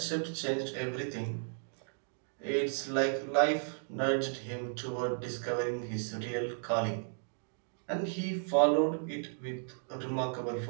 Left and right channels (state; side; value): silent; left; digital silence